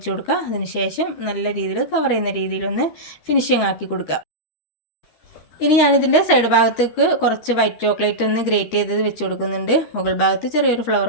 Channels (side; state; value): right; late; 13 ms